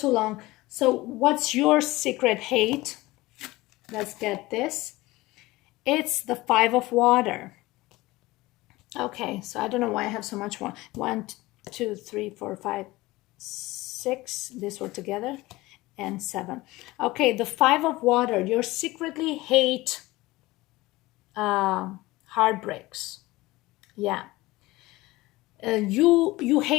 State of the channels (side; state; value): right; quieter; 19.7 dB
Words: long. So what's your secret hate? Let's get this. It's the Five of Water. Okay, so I don't know why I have so much more. 1, 2, 3, 4, 5, 6. This were together. And 7. Okay, the Five of Water. You secretly hate heartbreaks. Yeah. You